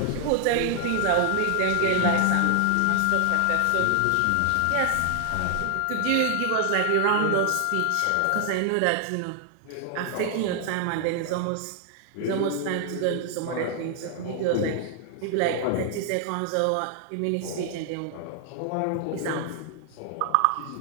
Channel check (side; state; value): both; different; correlation 0.00